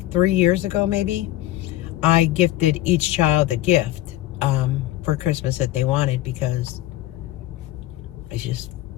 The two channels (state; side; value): quieter; right; 15.1 dB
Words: years ago maybe, I gifted each child a gift for Christmas that they wanted, because I just